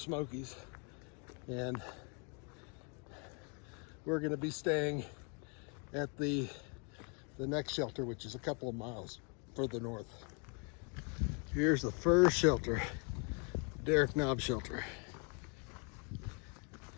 And we're gonna be staying at the next shelter, which is a couple of miles further north. Here's the first shelter, Derek Knob shelter.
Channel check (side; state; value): right; quieter; 36.5 dB